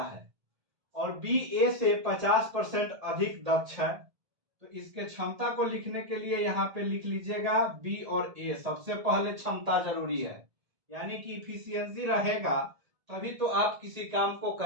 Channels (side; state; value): left; late; 1.8 ms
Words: है। और बी ए से 50% अधिक दक्ष है, तो इसके क्षमता को लिखने के लिए यहाँ पे लिख लीजिएगा बी और ए। सबसे पहले क्षमता जरूरी है, यानी कि इफिशियंसी रहेगा तभी तो आप किसी काम को